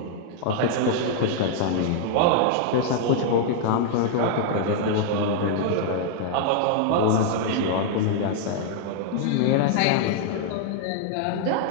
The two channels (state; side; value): different; both; correlation -0.01